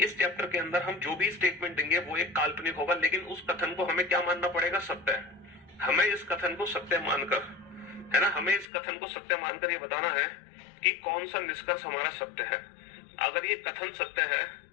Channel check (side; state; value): right; drops out; at 8.7 s